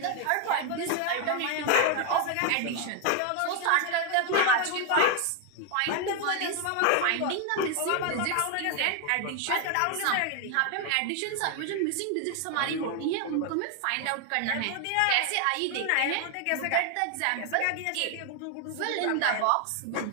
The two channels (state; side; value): different; both; correlation 0.00